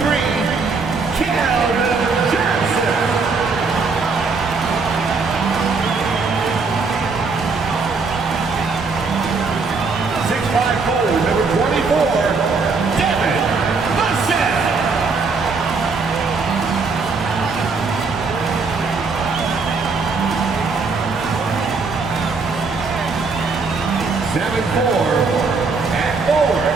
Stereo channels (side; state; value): left; quieter; 4.4 dB